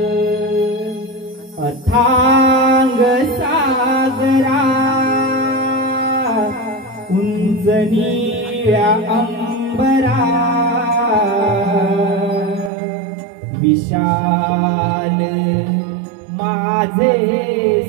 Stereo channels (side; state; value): left; drops out; at 12.7 s